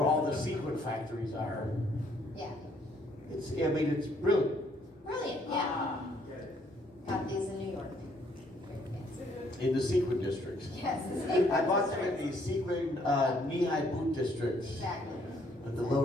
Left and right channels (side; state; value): both; normal; correlation 0.67